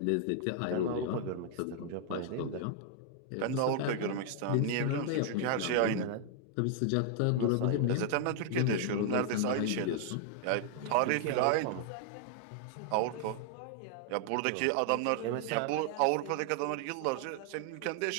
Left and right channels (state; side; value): different; both; correlation 0.00